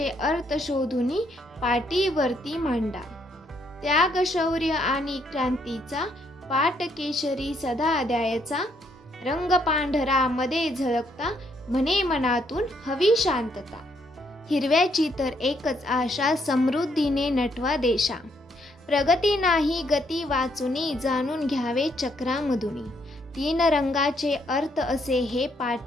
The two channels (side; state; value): both; normal; correlation 0.72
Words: अर्थ शोधूनी पाठीवरती मांडा. त्याग शौर्य आणि क्रांतीचा पाट केशरी सदा द्यायचा, रंग पांढरा मध्ये झळकता म्हणे मनातून हवी शांतता. हिरव्याची तर एकच आशा समृद्धीने नटवा देशा, प्रगती नाही गती वाचुनी जाणून घ्यावे चक्रामधुनी. 3 रंगाचे अर्थ असे हे